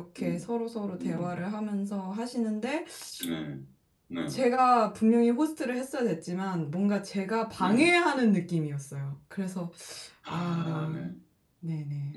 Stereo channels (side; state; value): both; identical; correlation 1.00